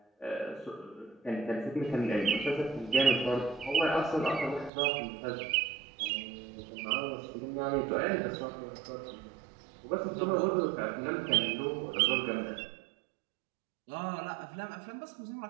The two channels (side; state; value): left; drops out; at 4.7 s